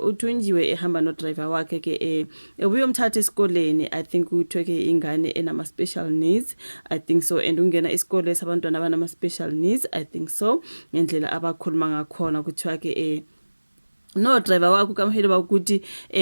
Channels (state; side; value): inverted; both; correlation -1.00